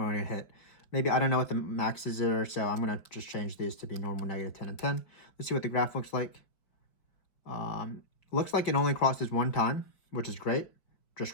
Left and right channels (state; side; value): late; right; 4.9 ms